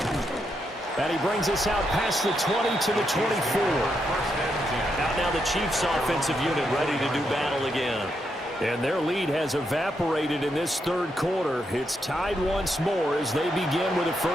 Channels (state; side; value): normal; both; correlation 0.81